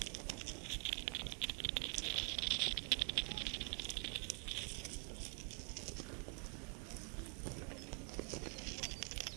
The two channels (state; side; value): quieter; left; 38.4 dB